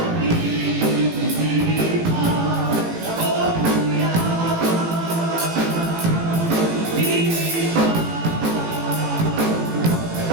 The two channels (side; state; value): left; late; 18 ms